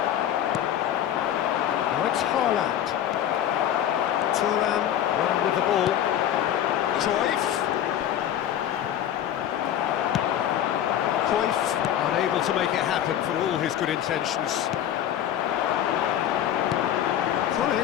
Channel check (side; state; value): right; quieter; 10.8 dB